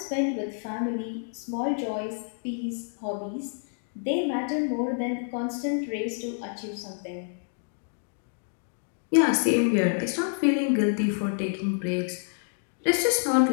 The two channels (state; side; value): silent; right; digital silence